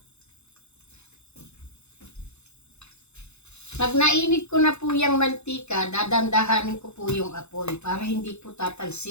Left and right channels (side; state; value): right; late; 0.81 ms